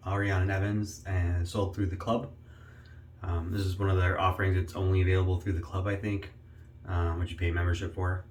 Ariane and Evans and sold through the club. This is one of their offerings. It's only available through the club, I think, which you pay membership for.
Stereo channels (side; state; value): both; identical; correlation 1.00